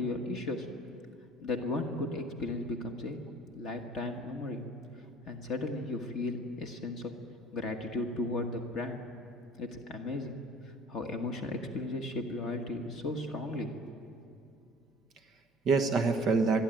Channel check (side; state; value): both; normal; correlation 0.49